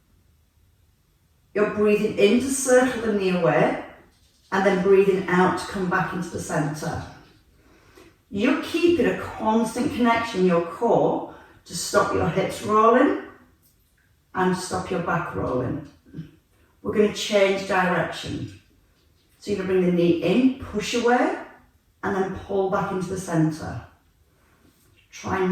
You're breathing in to circle the knee away and then breathing out to come back into the centre. You're keeping a constant connection in your core to stop your hips rolling and stop your back rolling. We're going to change direction. So you're going to bring the knee in, push away, and then pull back into the centre. Try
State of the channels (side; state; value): both; identical; correlation 1.00